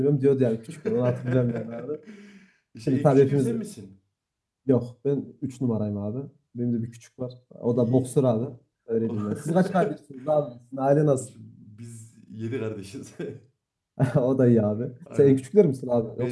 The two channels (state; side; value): identical; both; correlation 1.00